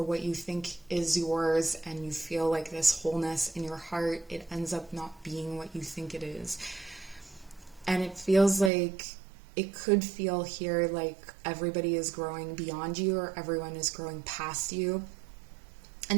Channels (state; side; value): drops out; left; at 8.7 s